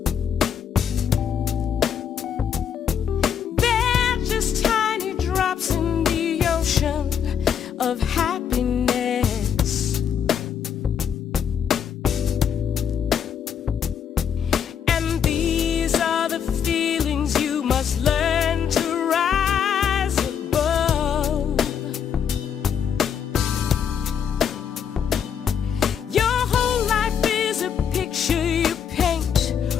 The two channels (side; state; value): right; quieter; 8.0 dB